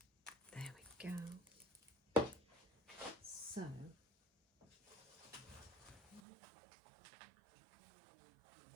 There we go. So,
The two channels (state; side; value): drops out; left; at 6.2 s